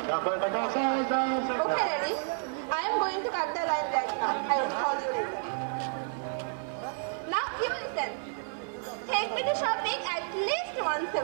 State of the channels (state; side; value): silent; left; 57 dB below the other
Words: Okay, Daddy. I am going to cut the line right now. I will call you later. Now, you listen. Take me to shopping at least once a